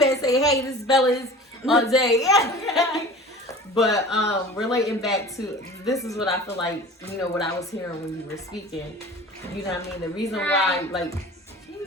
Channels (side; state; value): both; normal; correlation 0.40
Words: say, hey, this is Bella's all day. But relating back to, this is what I feel like, what I was hearing when you were speaking. You know what I mean? The reason why, like, she didn't